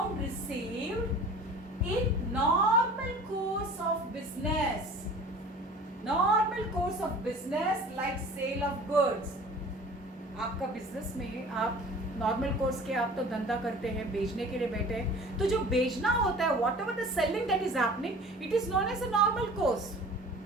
received in normal course of business. Normal course of business like sale of goods. आपका business में आप normal course के आप तो धंधा करते हैं, बेचने के लिए बैठे हैं, तो जो बेचना होता है whatever the selling that is happening, it is known as a normal course.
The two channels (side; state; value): both; normal; correlation 0.44